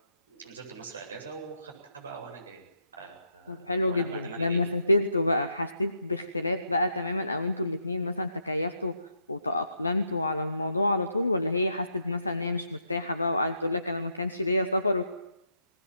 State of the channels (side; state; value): both; inverted; correlation -0.81